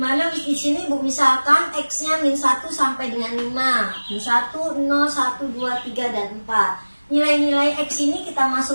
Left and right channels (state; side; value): inverted; both; correlation -1.00